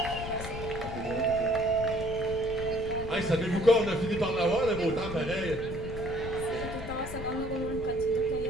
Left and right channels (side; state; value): left; noise; rumble, 9 dB below the sound